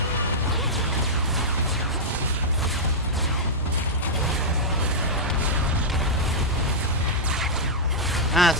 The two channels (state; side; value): normal; both; correlation -0.08